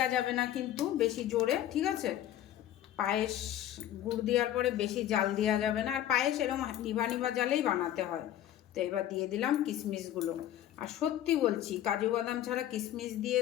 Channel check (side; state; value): right; quieter; 12.1 dB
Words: যাবে না কিন্তু, বেশি জোরে। ঠিক আছে, পায়েস গুড় দেওয়ার পরে বেশি জাল দেওয়া যাবে না, আর পায়েস এরকম নিভা নিভা জালেই বানাতে হয়। তো এবার দিয়ে দিলাম কিশমিশগুলো। আর সত্যি বলছি, কাজু বাদাম ছাড়া কিশমিশ দিয়ে